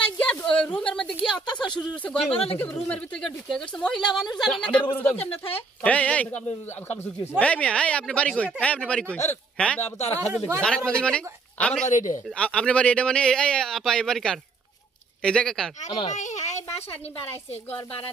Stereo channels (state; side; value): quieter; left; 4.0 dB